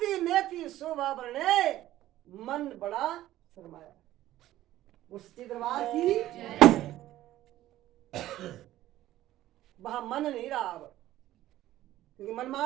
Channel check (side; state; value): left; quieter; 14.4 dB